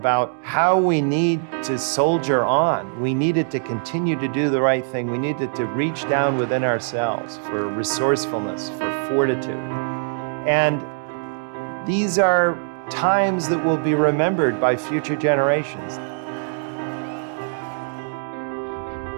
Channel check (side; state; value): left; silent; digital silence